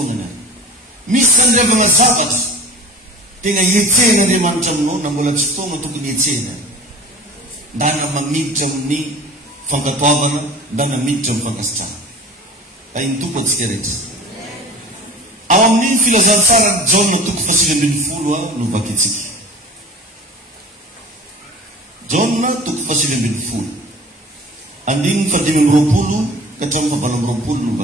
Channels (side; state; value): both; normal; correlation 0.39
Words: misy sandrevana zavatra tena hietsehana Andriamanitra aminao na mbola tsy fotoana tokony hietsehana ndana mamiditra amin'ny fankatoavana ndana miditra amin'ny fankasitrahana iny tompo atsika rehetra ao amin'ny filazantsara Jaona toko 7:10 no vakitsika Jaona toko 7:10 andiny 5:20 ka hatramin'ny 7:20 no